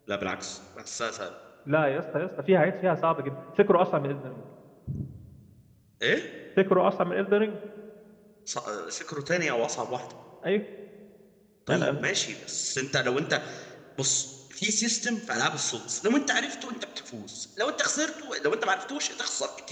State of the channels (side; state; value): both; identical; correlation 1.00